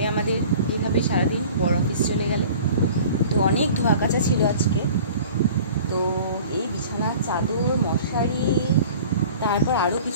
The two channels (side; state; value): both; inverted; correlation -0.44